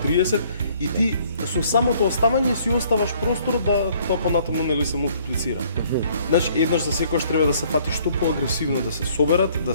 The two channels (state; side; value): inverted; both; correlation -0.61